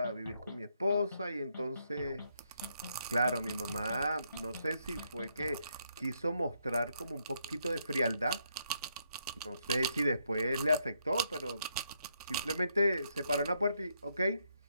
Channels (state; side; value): inverted; both; correlation -0.76